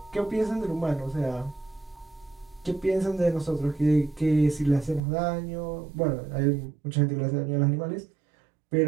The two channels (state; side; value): drops out; left; at 5.0 s